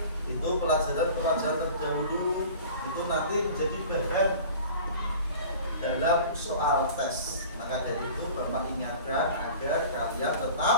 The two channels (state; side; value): inverted; both; correlation -0.42